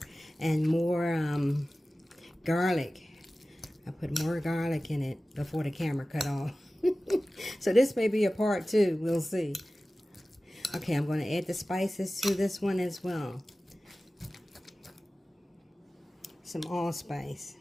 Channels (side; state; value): both; normal; correlation 0.96